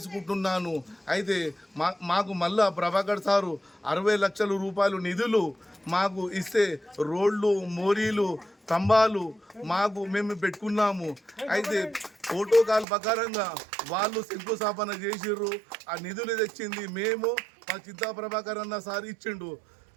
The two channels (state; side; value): drops out; left; at 12.9 s